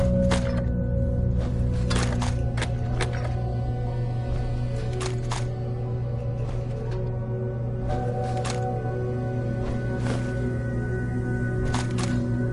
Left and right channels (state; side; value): identical; both; correlation 1.00